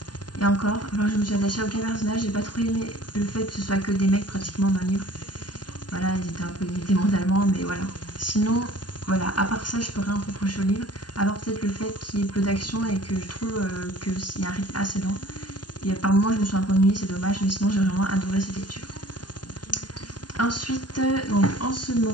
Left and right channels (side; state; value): right; late; 0.70 ms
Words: Et encore, je me suis attachée à aucun personnage. J'ai pas trop aimé le fait que ce soit que des mecs pratiquement dans le livre. Voilà, ils étaient un peu limités mentalement, mais voilà. Sinon, voilà, à part ça, je peux rien reprocher au livre. À part peut-être le fait qu'il y ait peu d'action et que je trouve qu'il y a un rythme assez lent. Et par moments, je me suis un peu ennuyée, c'est dommage, mais sinon, j'ai vraiment adoré cette lecture. Ensuite, donc, en ce